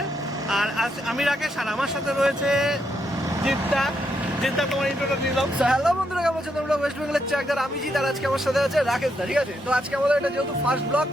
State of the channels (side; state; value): both; normal; correlation 0.79